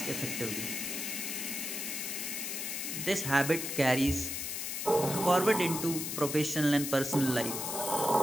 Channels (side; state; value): left; noise; hiss, 4 dB below the sound